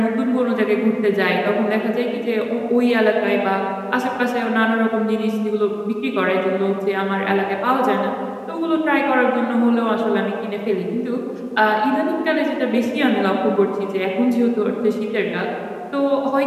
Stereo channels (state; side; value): identical; both; correlation 1.00